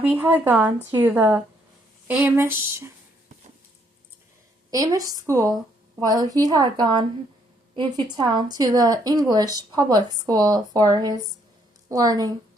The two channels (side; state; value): both; normal; correlation 0.70